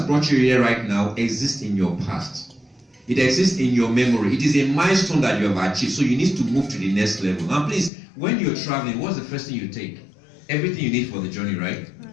brought you here right now, exists in your past. It exists in your memory. It is a milestone that you have achieved. So you need to move to the next level. And please, when you're traveling, what's the first thing you take? Everything you need for the journey, right?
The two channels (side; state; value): right; drops out; at 7.9 s